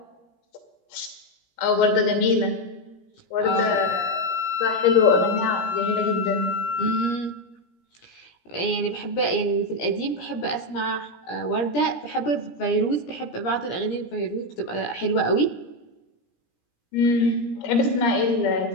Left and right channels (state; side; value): late; right; 17 ms